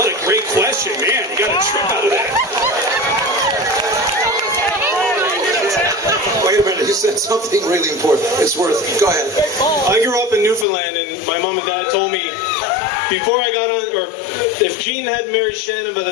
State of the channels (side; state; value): right; drops out; at 10.7 s